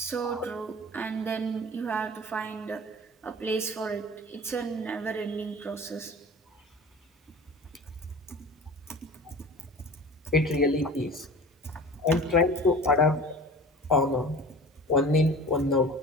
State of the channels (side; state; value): both; normal; correlation 0.39